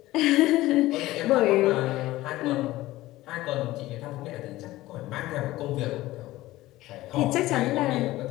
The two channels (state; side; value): quieter; right; 17.1 dB